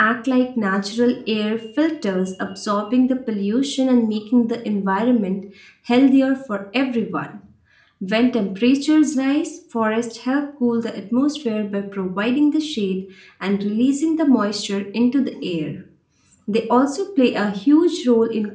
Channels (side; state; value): both; identical; correlation 1.00